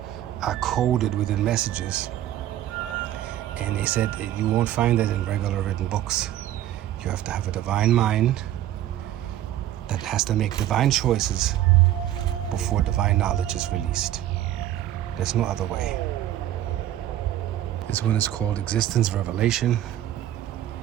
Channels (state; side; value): quieter; left; 12.7 dB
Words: are coded within messages. And they said you won't find that in regular written books. You have to have a divine mind that has to make divine choices before divine knowledge is released. There's no other way. This one is called Existence Revelation.